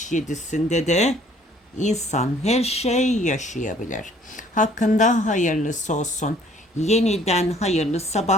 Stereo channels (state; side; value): normal; both; correlation 0.58